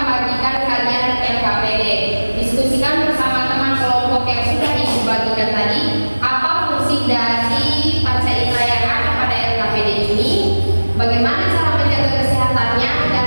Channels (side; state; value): both; inverted; correlation -1.00